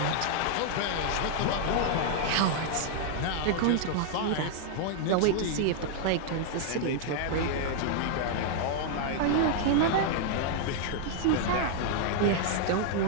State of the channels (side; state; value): both; different; correlation 0.00